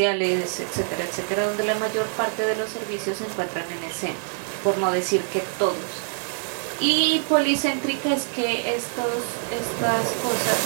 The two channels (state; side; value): silent; left; 61 dB below the other